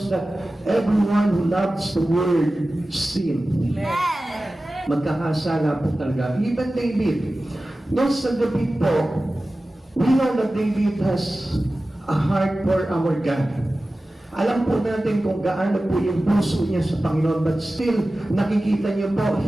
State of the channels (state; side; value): normal; both; correlation 0.96